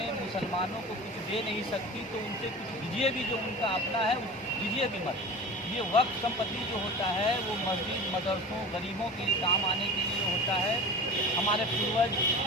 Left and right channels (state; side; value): normal; both; correlation 0.34